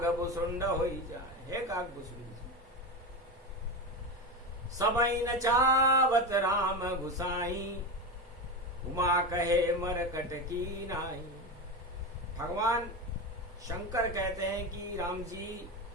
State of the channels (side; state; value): both; normal; correlation 0.19